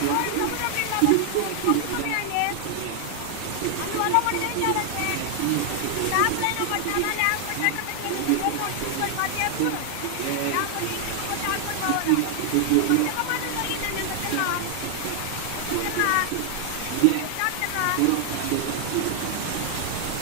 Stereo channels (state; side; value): different; both; correlation 0.00